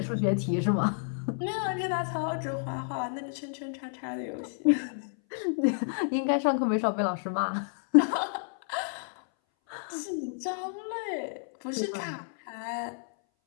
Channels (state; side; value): silent; right; 58 dB below the other